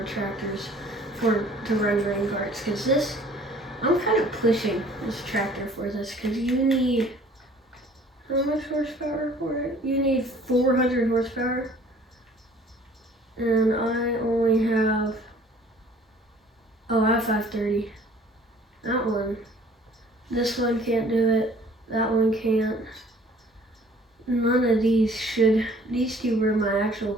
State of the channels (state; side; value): normal; both; correlation 0.53